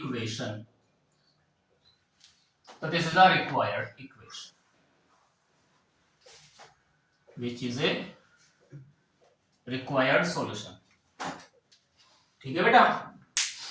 तो this is a required equation which is a required solution. ठीक है बेटा,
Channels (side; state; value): both; identical; correlation 1.00